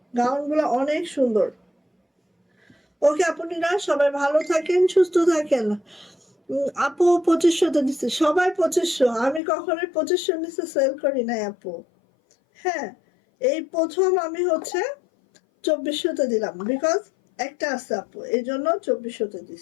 গাউনগুলো অনেক সুন্দর। ওকে আপুরা সবাই ভালো থাকেন, সুস্থ থাকেন। আপু 2500 দিচ্ছে, সবাই 2500, আমি কখনোই 2500 নিচে সেল করি নাই আপু। হ্যাঁ এই প্রথম আমি হচ্ছে 2400 দিলাম, বিকজ একটা আছে আপু, এই জন্য 2400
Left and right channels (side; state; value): right; drops out; at 9.4 s